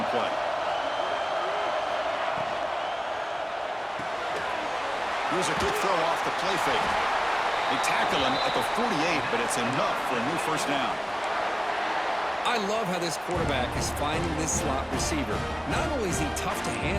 play? Here's a good throw off the play fake. They tackle him at the 48, but it's enough for a new 1st down. I love how this quarterback is finding this slot receiver. Not only is he tough to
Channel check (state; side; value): identical; both; correlation 1.00